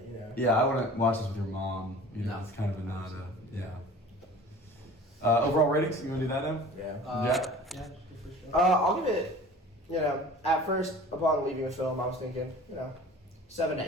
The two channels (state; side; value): normal; both; correlation 0.43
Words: you know. Yeah, I wouldn't watch this with your mom. You know, No. it's kind of a nada. Yeah. Overall ratings? You want to do that now? Yeah. Yeah, for sure. I'll give it, at first, upon leaving the film, I was thinking, 7 to